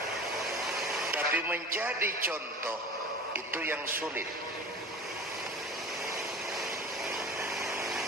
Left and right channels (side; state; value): both; normal; correlation 0.38